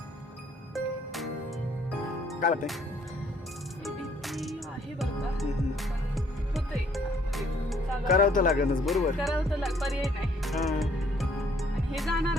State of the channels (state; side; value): normal; both; correlation 0.63